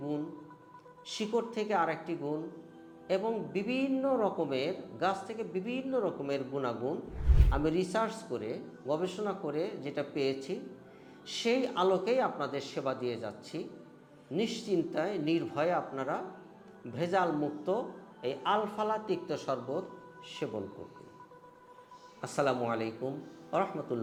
গুণ, শিকড় থেকে আরেকটি গুণ এবং বিভিন্ন রকমের গাছ থেকে বিভিন্ন রকমের গুণাগুণ আমি রিসার্চ করে গবেষণা করে যেটা পেয়েছি সেই আলোকেই আপনাদের সেবা দিয়ে যাচ্ছি। নিশ্চিন্তায় নির্ভয়ে আপনারা ভেজাল মুক্ত এই আলফালা তিক্ত শরবত সেবন করবেন। আসসালামু আলাইকুম ওয়া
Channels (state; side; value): identical; both; correlation 1.00